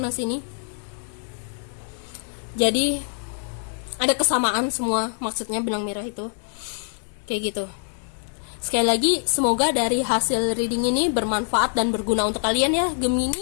sini. Jadi ada kesamaan semua, maksudnya benang merah itu kayak gitu. Sekali lagi, semoga dari hasil reading ini bermanfaat dan berguna untuk kalian ya,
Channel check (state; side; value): silent; right; digital silence